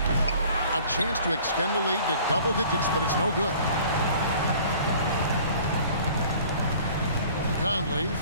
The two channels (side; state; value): both; inverted; correlation -0.50